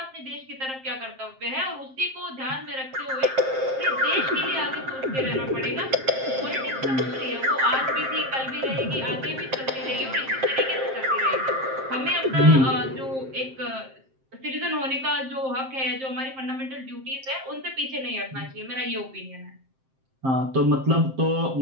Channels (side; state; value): left; late; 7.6 ms